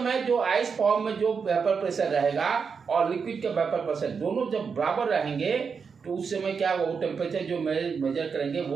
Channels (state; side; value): quieter; left; 5.8 dB